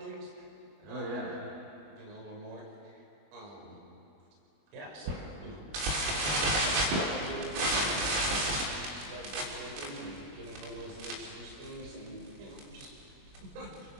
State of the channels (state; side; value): late; left; 21 ms